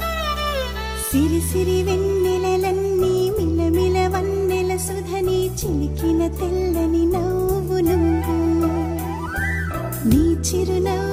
సిరి సిరి వెన్నెలలన్నీ మిలమిల వన్నెల సుధని చిలికిన తెల్లని నవ్వు నువ్వు నీ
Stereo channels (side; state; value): both; identical; correlation 1.00